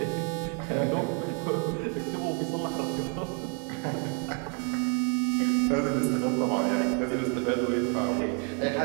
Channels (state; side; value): quieter; left; 39.2 dB